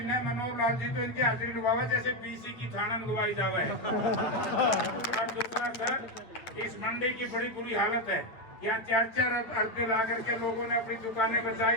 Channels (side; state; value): right; late; 8.8 ms